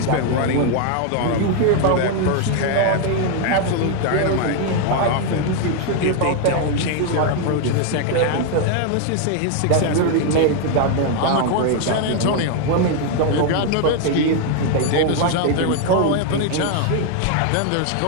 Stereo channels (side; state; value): both; different; correlation 0.01